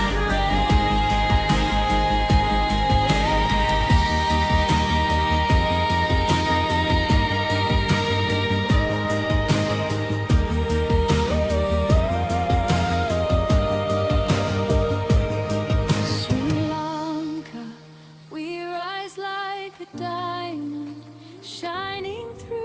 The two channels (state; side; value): identical; both; correlation 1.00